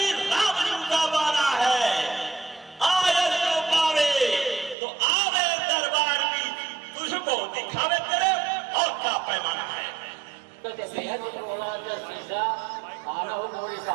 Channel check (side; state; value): left; drops out; at 4.8 s